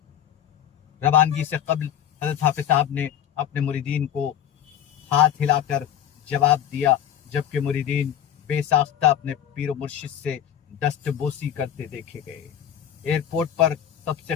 रवानगी से कबल हज़रत हाफिज साहब ने अपने मुरीदीन को हाथ हिलाकर जवाब दिया, जबकि मुरीदीन बेसाख्ता अपने पीर मुर्शिद से दस्तबोसी करते देखे गए। एयरपोर्ट पर सबसे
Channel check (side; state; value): right; quieter; 9.9 dB